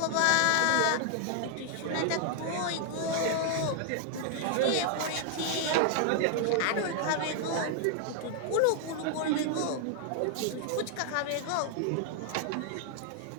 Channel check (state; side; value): different; both; correlation 0.00